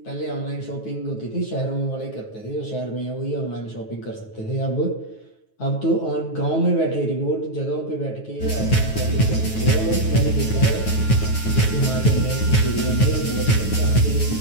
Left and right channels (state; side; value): late; right; 9.3 ms